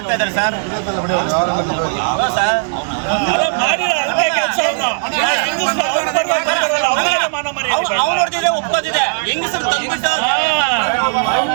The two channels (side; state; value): left; silent; digital silence